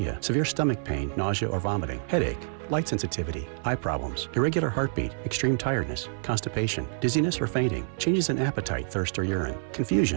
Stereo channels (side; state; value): left; silent; 60 dB below the other